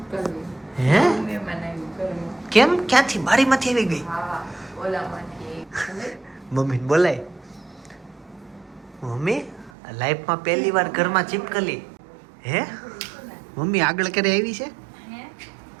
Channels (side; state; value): left; drops out; at 9.7 s